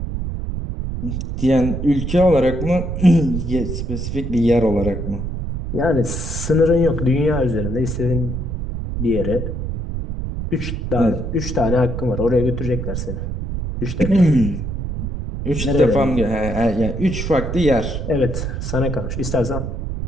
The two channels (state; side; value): noise; right; rumble, 4 dB below the sound